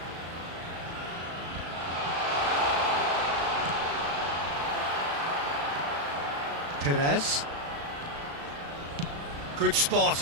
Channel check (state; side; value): late; left; 36 ms